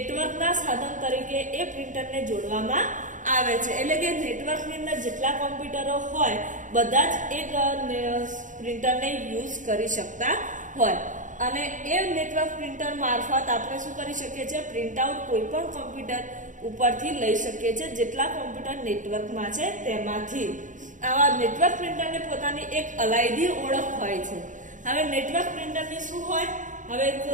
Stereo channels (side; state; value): left; late; 0.37 ms